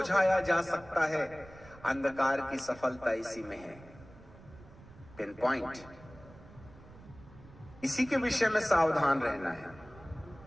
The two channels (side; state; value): right; noise; rumble, 20 dB below the sound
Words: जा सकता है, अंधकार की सफलता इसी में है। Pin point. इसी के विषय में सावधान रहना है